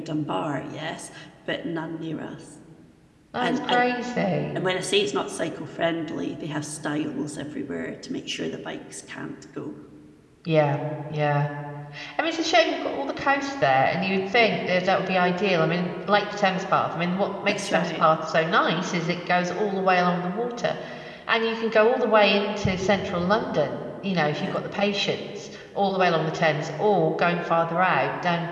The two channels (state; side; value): identical; both; correlation 1.00